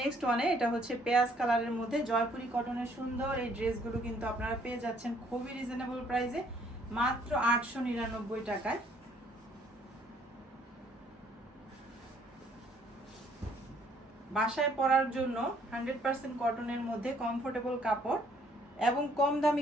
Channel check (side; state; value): both; normal; correlation 0.64